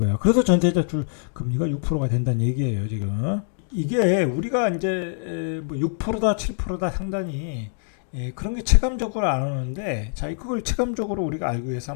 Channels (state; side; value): silent; right; digital silence